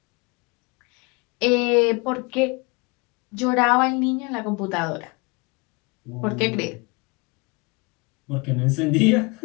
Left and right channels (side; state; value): right; quieter; 28.1 dB